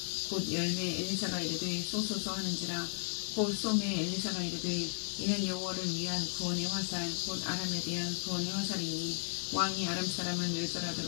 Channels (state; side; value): silent; right; 55 dB below the other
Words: 곧 열매 엘리사가 이르되 쏘소서 하는지라. 곧 쏘매 엘리사가 이르되 이는 여호와를 위한 구원의 화살 곧 아람에 대한 구원의 화살이니 왕이 아람 사람을